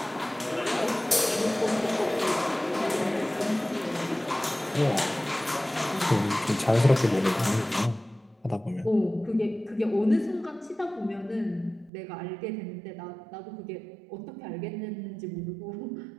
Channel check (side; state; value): left; drops out; at 11.9 s